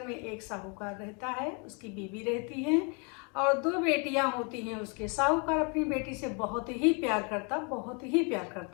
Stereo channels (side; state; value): right; quieter; 34.5 dB